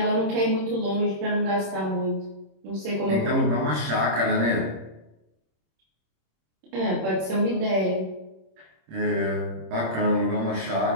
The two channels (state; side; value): late; left; 26 ms